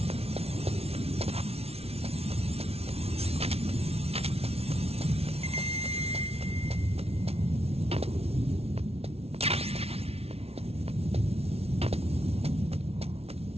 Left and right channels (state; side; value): late; left; 0.30 ms